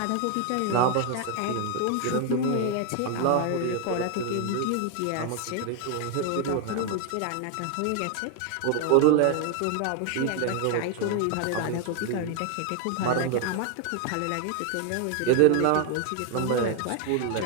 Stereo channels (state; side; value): different; both; correlation 0.00